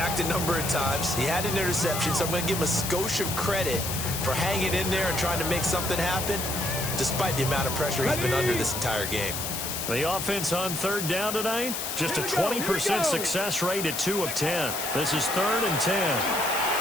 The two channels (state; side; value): noise; left; hiss, 4 dB below the sound